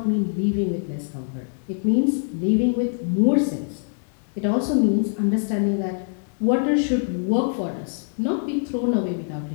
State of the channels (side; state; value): right; silent; digital silence